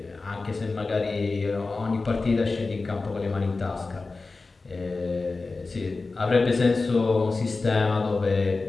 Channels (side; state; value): right; quieter; 3.7 dB